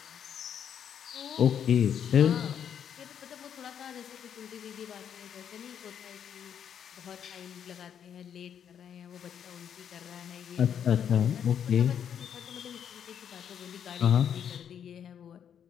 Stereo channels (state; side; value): quieter; right; 8.6 dB